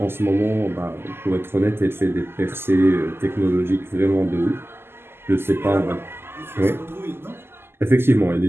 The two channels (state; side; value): late; left; 0.12 ms